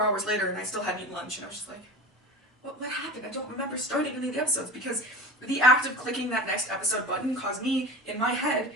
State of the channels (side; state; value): both; normal; correlation 0.32